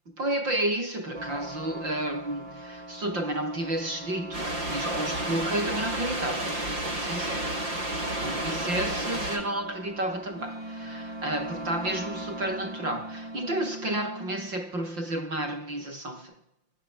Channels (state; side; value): late; left; 5.7 ms